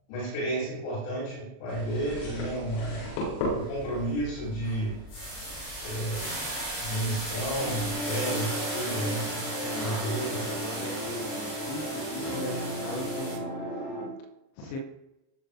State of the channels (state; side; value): late; right; 38 ms